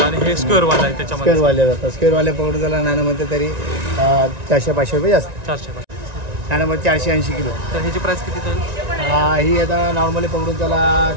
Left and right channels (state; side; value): late; left; 1.9 ms